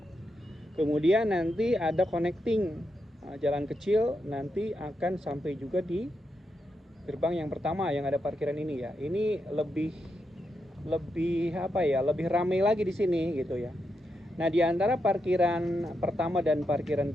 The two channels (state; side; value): normal; both; correlation 0.84